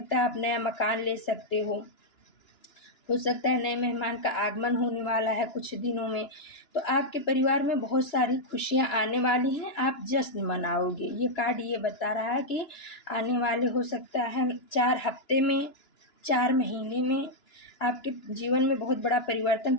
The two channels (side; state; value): right; late; 2.9 ms